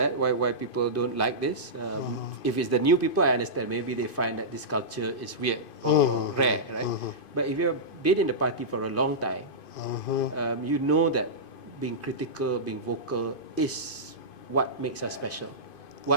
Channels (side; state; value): right; late; 2.5 ms